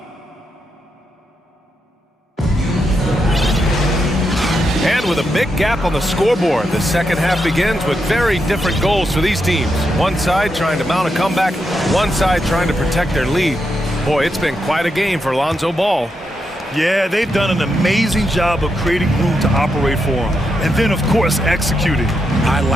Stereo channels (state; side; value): normal; both; correlation 0.83